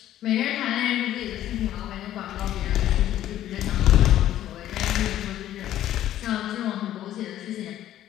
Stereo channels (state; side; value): quieter; right; 12.5 dB